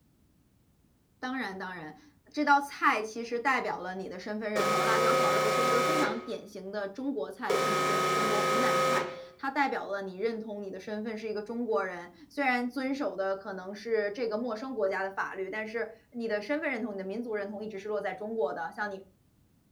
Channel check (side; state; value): both; identical; correlation 1.00